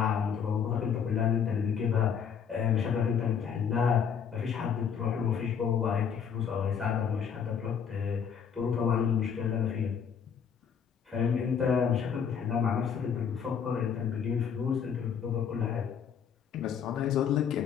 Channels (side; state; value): right; quieter; 7.3 dB